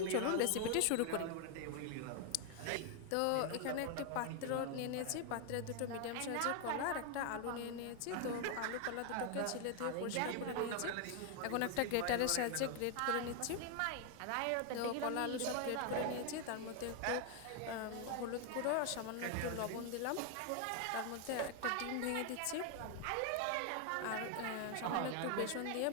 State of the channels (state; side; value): different; both; correlation 0.00